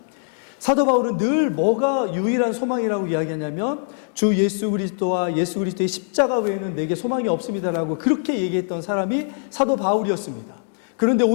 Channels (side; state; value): right; silent; digital silence